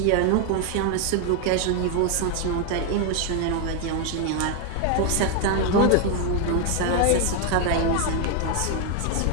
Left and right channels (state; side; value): different; both; correlation 0.01